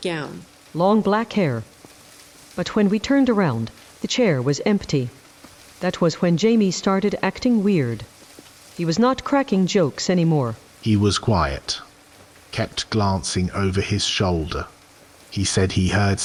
gown. Long black hair. But when we turned around, the chair was empty. That was when Jamie started acting weird. He was not cracking jokes anymore. He was quiet. Kept glancing over his shoulder. He said he heard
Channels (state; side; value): identical; both; correlation 1.00